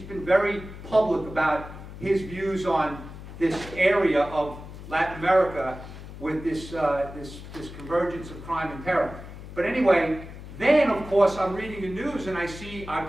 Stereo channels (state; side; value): noise; left; hum, 13 dB below the sound